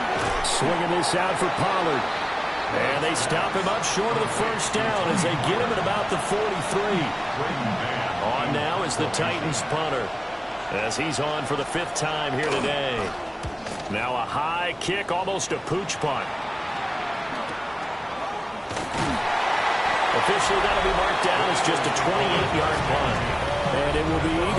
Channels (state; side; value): identical; both; correlation 1.00